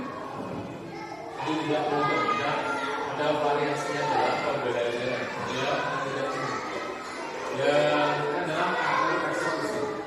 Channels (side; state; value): both; identical; correlation 1.00